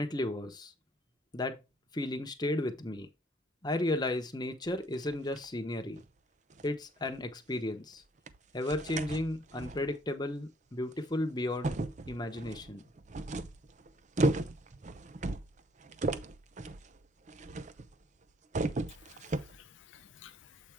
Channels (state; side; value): normal; both; correlation 0.63